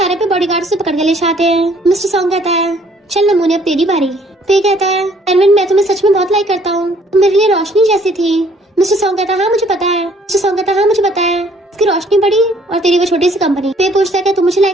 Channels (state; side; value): normal; both; correlation 0.61